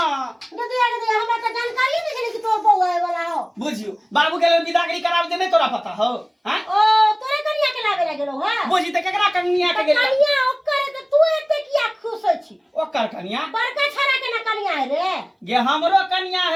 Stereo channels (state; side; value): identical; both; correlation 1.00